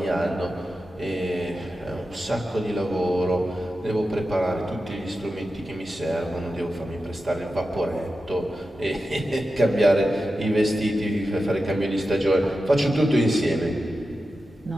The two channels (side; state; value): both; normal; correlation 0.91